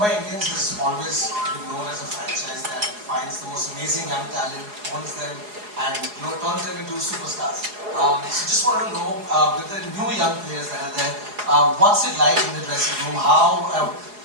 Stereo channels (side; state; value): left; late; 4.8 ms